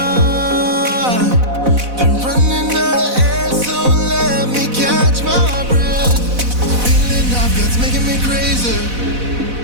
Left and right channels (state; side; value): late; left; 4.0 ms